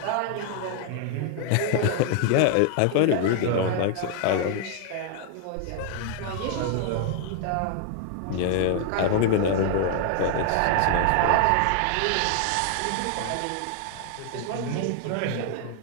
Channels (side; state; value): both; different; correlation 0.00